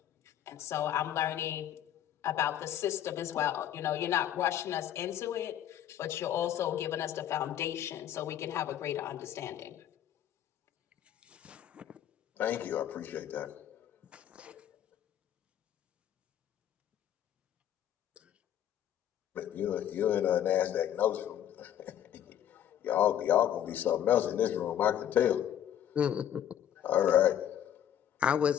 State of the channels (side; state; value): right; quieter; 10.6 dB